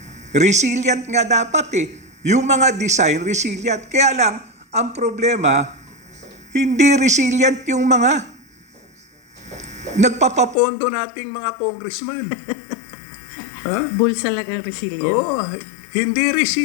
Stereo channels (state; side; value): drops out; right; at 10.6 s